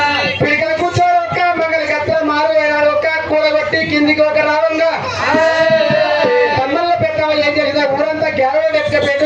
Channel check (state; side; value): identical; both; correlation 1.00